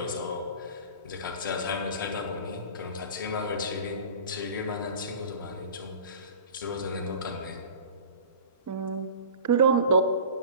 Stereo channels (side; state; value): both; inverted; correlation -0.39